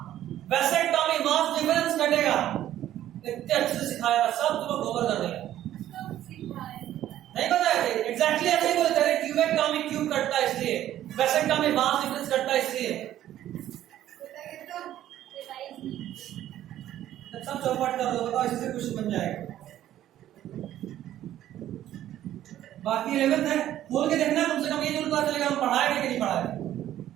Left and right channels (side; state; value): left; quieter; 12.5 dB